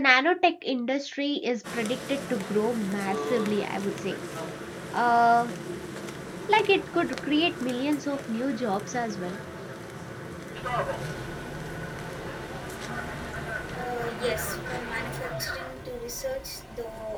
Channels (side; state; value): both; identical; correlation 1.00